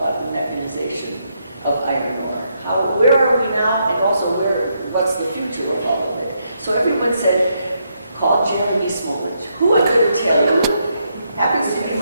the mechanization of iron ore. Where are we now, and also what's the future of all of it? So everyone said, call Jeremy Smolich, who I'm going to tell you happens to be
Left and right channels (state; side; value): inverted; both; correlation -0.78